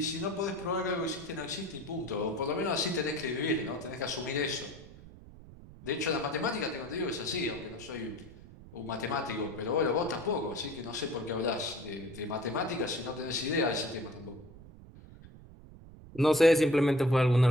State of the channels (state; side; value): noise; right; rumble, 18 dB below the sound